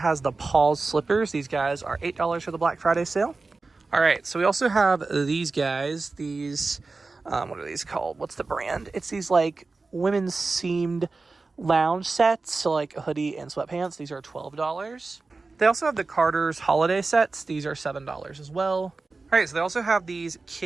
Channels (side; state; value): left; quieter; 3.8 dB